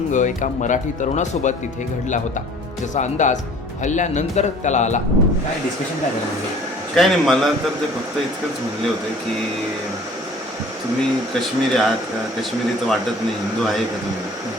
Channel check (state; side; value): normal; both; correlation 0.50